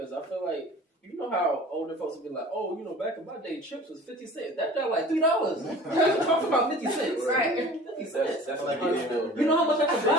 I feel like you know how older folks would be like, oh, you know, back in my day, chips was 50 cents. That got like $3. Talk about 50 cents, Right? 50 cents. That's like like You know how much I could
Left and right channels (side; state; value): both; normal; correlation 0.44